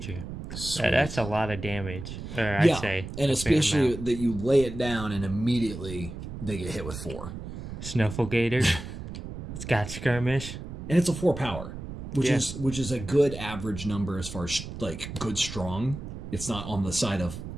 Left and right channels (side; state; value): right; noise; rumble, 9 dB below the sound